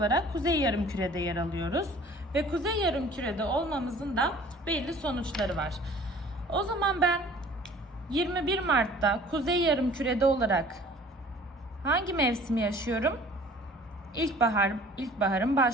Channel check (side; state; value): both; normal; correlation 0.50